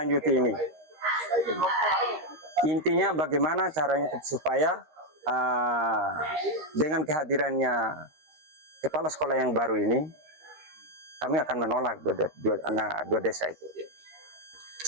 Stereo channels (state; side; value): late; left; 13 ms